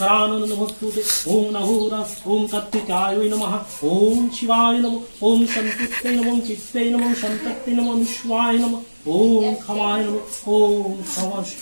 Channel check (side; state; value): both; inverted; correlation -1.00